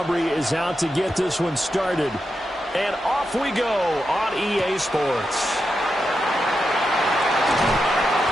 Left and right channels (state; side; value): normal; both; correlation 0.87